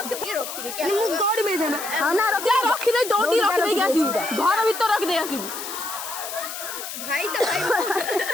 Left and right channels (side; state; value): left; noise; hiss, 8 dB below the sound